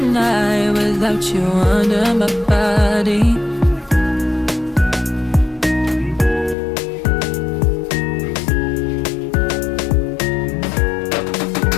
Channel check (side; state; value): right; drops out; at 6.6 s